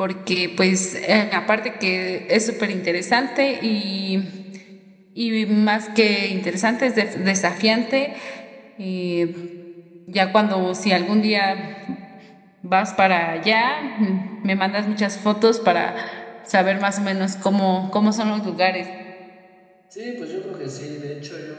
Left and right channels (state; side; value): identical; both; correlation 1.00